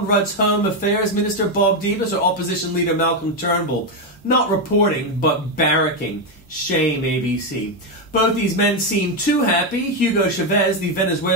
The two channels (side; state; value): both; normal; correlation 0.06